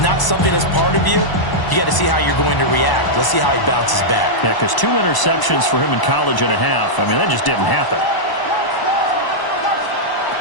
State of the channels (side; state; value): right; late; 1.0 ms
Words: something that's part of you. You got to see how you're going to react. Let's see how he bounces back. Yeah, because 2 interceptions for him in college and a half. I mean, that just didn't happen.